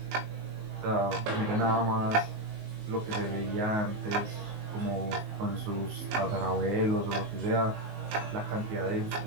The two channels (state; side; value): late; left; 19 ms